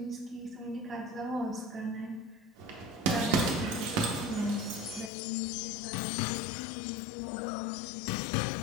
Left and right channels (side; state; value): right; drops out; at 5.1 s